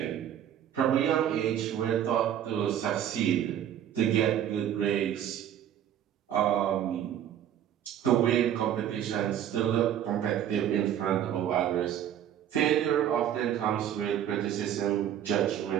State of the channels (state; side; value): quieter; left; 10.3 dB